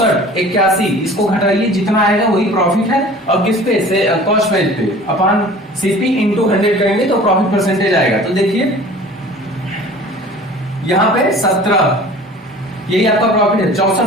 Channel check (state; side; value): normal; both; correlation 0.44